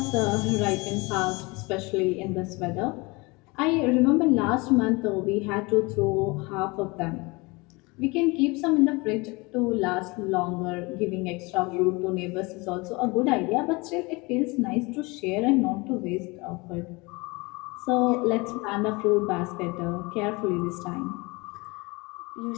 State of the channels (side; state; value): right; quieter; 25.7 dB